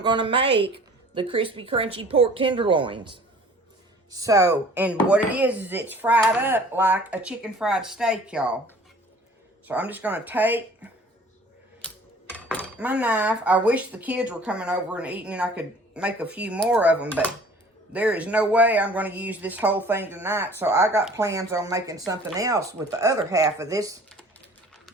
going to make the crispy, crunchy pork tenderloins. So, and what it is it's fried up like a chicken fried steak, y'all. So I'm just going to take my knife. I wish the kids were coming over and eating and I could make a few more of them, but there is no way I'm going to use this whole thing tonight. So I got plans on making something else with the other half of this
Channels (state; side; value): normal; both; correlation 0.49